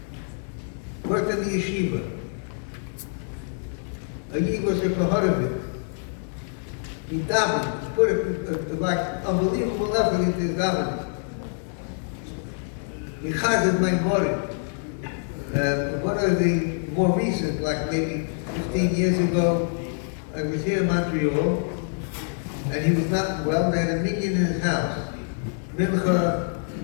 Worked in the yeshiva. He was a Koharovit. He davened, put it like unbelievable effort into his davening. He chazed my morim. One of the more recent, like maybe 15 years ago, I was here in Montreal, and he was not well. They had a minyan in his house, Mincha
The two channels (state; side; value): silent; right; digital silence